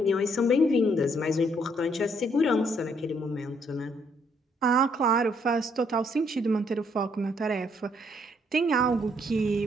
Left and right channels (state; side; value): normal; both; correlation 0.69